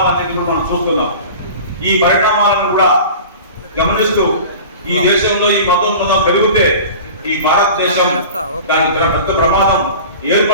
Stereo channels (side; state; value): both; inverted; correlation -0.38